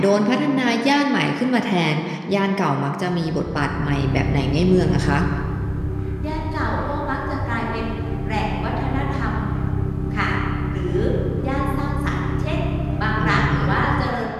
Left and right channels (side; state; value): both; identical; correlation 1.00